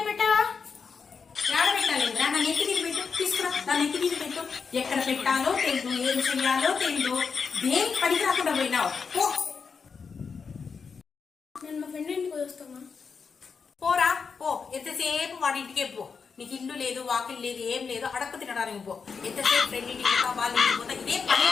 పెట్టావా? పెట్టాలి నా నెత్తి మీద పెట్టు, తీసుకురా నా నెత్తి మీద పెట్టు. ఎక్కడ పెట్టాలో తెలియదు, ఏం చెయ్యాలో తెలియదు, దేనికి పనికి రాకుండా పోయినావు. నేను మా ఫ్రెండ్ ఇంటికి వస్తామా? పోరా పో, ఎంతసేపు వాడి ఇంటికే పో. నీకు ఇల్లు లేదు, వాకిల్ లేదు, ఏం లేదు, అడక్క తినడానికి పో. ఎంతసేపు ఫ్రెండ్ ఇంటికి పోతా, వాళ్ళ ఇంటికి పోతా, ఇదే పని.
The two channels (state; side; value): quieter; right; 5.6 dB